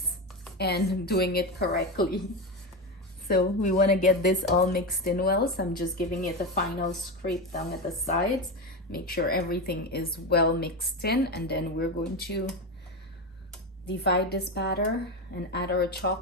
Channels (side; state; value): both; normal; correlation 0.17